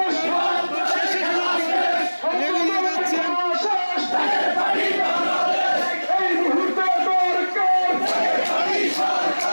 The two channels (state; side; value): inverted; both; correlation -1.00